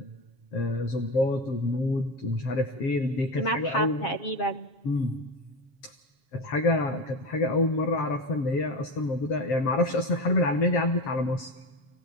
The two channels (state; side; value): late; right; 7.3 ms